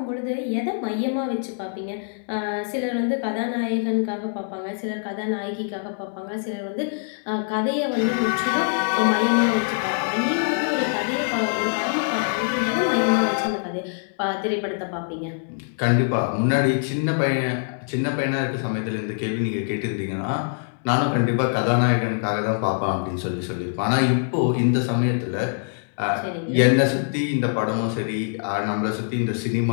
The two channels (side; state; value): right; silent; 63 dB below the other